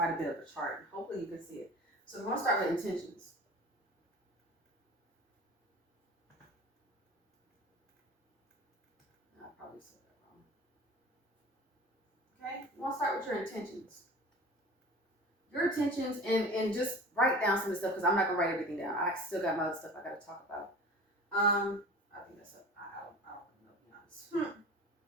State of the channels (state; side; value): normal; both; correlation 0.39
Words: a bit of a chart. Hopefully you can see it. So we're going to start with intentions. I probably said that wrong. Okay, you want to start with your intentions. Your intentions, and just write down some of the stuff, because I'm not going to write everything down. I still got my other stuff I got to talk about. I think that's up. I don't know, to be honest.